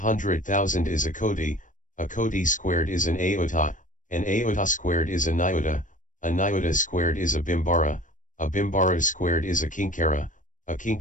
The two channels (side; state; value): right; late; 0.37 ms